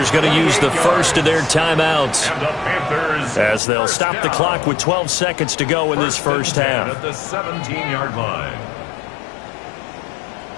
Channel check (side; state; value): right; drops out; at 3.6 s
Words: going to use the first of their timeouts as they'll stop the clock with 12 seconds to go in this first half. At the 17-yard line.